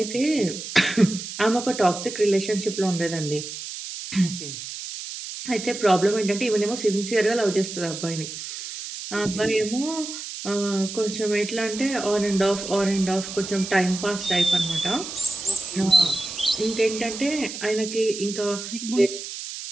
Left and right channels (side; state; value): right; noise; hiss, 9 dB below the sound